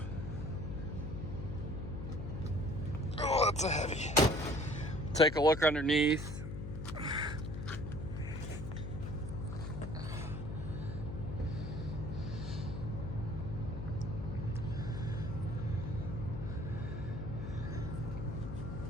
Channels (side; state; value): left; noise; hum, 5 dB below the sound